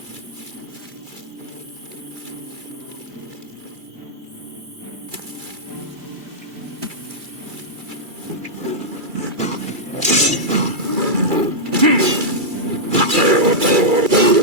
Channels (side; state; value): left; late; 2.3 ms